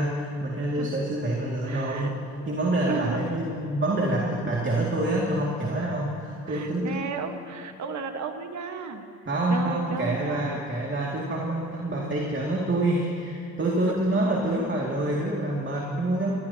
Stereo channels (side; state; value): both; normal; correlation 0.49